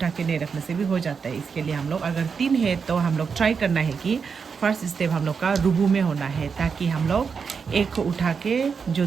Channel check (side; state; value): left; quieter; 5.8 dB